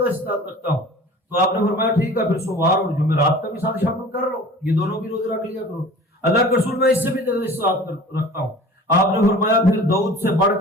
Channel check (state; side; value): normal; both; correlation 0.43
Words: استطاعت رکھتا ہوں. تو آپ نے فرمایا ٹھیک ہے پھر سوموار اور جمعرات کا بھی ساتھ شامل کر لو، یہ دونوں بھی روزے رکھ لیا کرو. اللہ کے رسول میں اس سے بھی زیادہ استطاعت رکھتا ہوں. آپ نے فرمایا پھر داؤد سے بڑھ